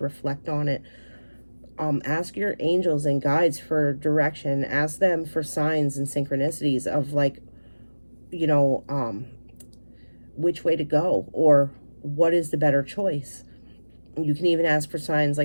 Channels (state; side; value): inverted; both; correlation -1.00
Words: reflect on it. Ask your angels and guides for direction. Ask them for signs and synchronicities of like, which way to go or what is the better choice. You can even ask for signs